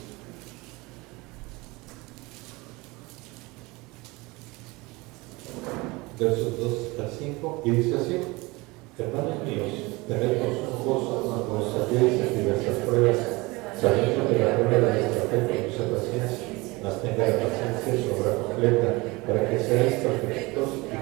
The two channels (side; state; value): left; quieter; 23.5 dB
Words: Versos 2 al 5, y dice así: hermanos míos, tened por sumo gozo cuando os halléis en diversas pruebas, sabiendo que la prueba de vuestra fe produce paciencia, mas tenga la paciencia su obra completa, para que seáis perfectos y